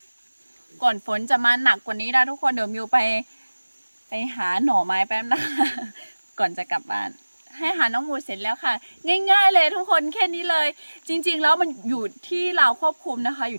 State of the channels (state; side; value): inverted; both; correlation -1.00